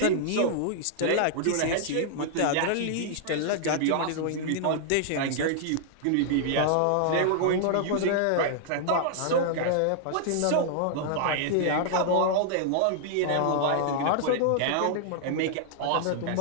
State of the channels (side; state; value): both; different; correlation -0.01